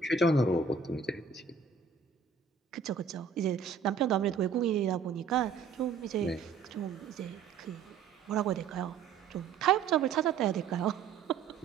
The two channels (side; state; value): left; quieter; 5.9 dB